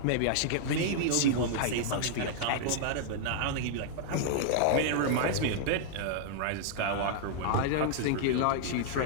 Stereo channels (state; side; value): different; both; correlation -0.01